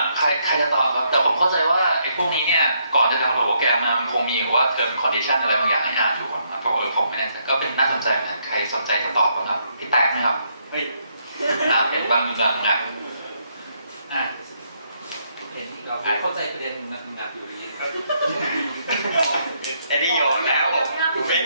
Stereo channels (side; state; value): both; inverted; correlation -0.74